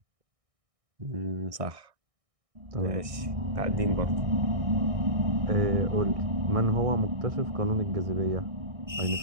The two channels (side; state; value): left; late; 1.6 ms